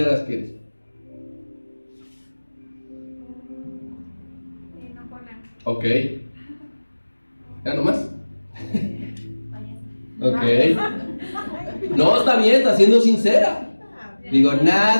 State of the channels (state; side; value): inverted; both; correlation -1.00